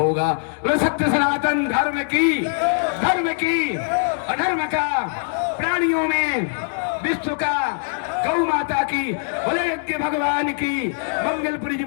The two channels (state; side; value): silent; right; digital silence